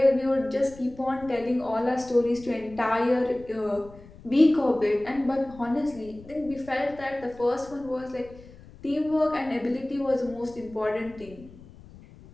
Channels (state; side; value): noise; left; rumble, 20 dB below the sound